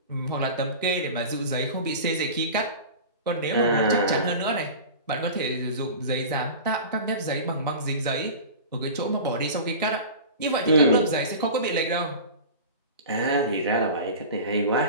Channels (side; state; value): both; inverted; correlation -0.34